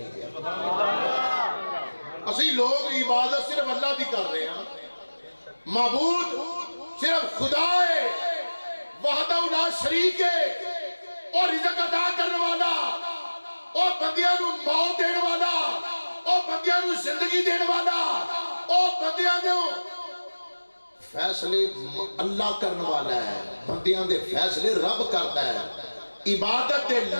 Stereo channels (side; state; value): both; inverted; correlation -1.00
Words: اسی لوگ عبادت صرف اللہ دی کر رہے ہیں، معبود صرف خدا ہے وحدہ لا شریک ہے، اور رزق عطا کرنے والا، اور بندیاں نو موت دینے والا، اور بندیاں نو زندگی دینے والا، اور بندیاں نو فیصلے اللہ کرنے والا ہے، بندیاں دے فیصلے رب کرتا ہے۔ عبادت دے